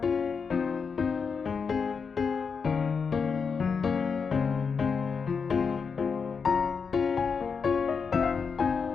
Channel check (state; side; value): quieter; right; 5.7 dB